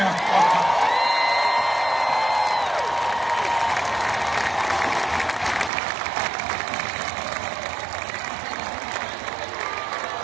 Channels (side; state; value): left; drops out; at 5.7 s